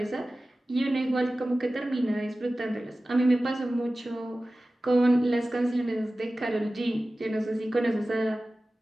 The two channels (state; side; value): normal; both; correlation 0.96